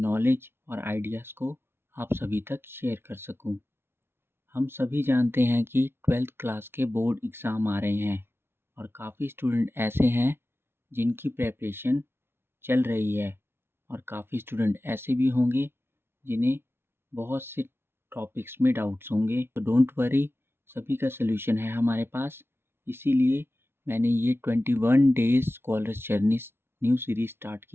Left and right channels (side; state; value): left; late; 0.11 ms